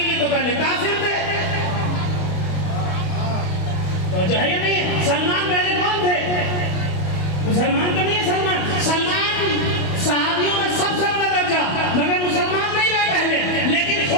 یہ تو پہلے کافر تھے. توجہ ہے یا نہیں؟ سلمان پہلے کون تھے؟ مسلمان تو نہیں ہے. سلمان صحابیوں میں سب سے بڑا درجہ، مگر مسلمان نہیں رہے پہلے. لیکن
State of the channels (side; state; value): right; late; 28 ms